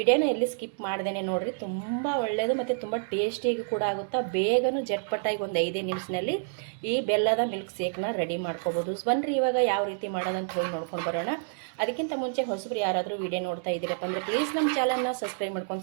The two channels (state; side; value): silent; left; digital silence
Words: ಎಲ್ಲಿ ಸ್ಕಿಪ್ ಮಾಡ್ದೇನೆ ನೋಡ್ರಿ. ತುಂಬ ಒಳ್ಳೆಯದು ಮತ್ತು ತುಂಬ ಟೇಸ್ಟಿಯಾಗಿ ಕೂಡ ಆಗುತ್ತಾ. ಬೇಗನೂ ಜಟ್ಪಟ್ಟಾಗಿ ಒಂದು 5 ನಿಮಿಷದಲ್ಲಿ ಈ ಬೆಲ್ಲದ ಮಿಲ್ಕ್ ಶೇಕ್ನ ರೆಡಿ ಮಾಡ್ಕೋಬೋದು. ಬನ್ನಿರಿ ಇವಾಗ ಯಾವ ರೀತಿ ಮಾಡೋದಂತ ಹೇಳಿ ನೋಡ್ಕೊಂಡು ಬರೋಣ. ಅದಕ್ಕಿಂತ ಮುಂಚೆ ಹೊಸಬ್ರು ಯಾರಾದರೂ ವಿಡಿಯೋ ನೋಡ್ತಾ ಇದ್ದೀರಪ್ಪ ಅಂದರೆ ಪ್ಲೀಸ್ ನಮ್ಮ ಚಾನಲ್ನ ಸಬ್ಸ್ಕ್ರೈಬ್